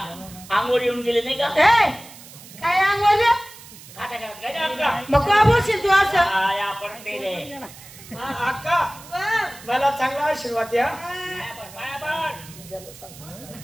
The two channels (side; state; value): right; noise; hiss, 18 dB below the sound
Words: आंघोळ येऊन गेले नाही का ए, काय अंगवलं खाता करत काय अक्का मग का बोलशील तू असं? काय आपण ते रे अक्का मला चांगला आशीर्वाद द्या.